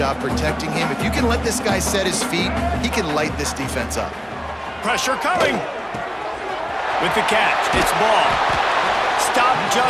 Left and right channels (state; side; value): identical; both; correlation 1.00